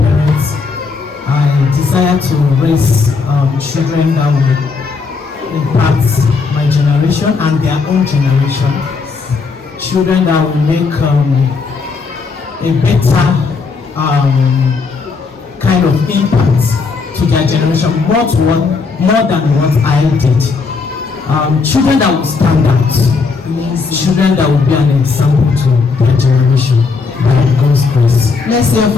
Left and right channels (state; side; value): quieter; right; 4.6 dB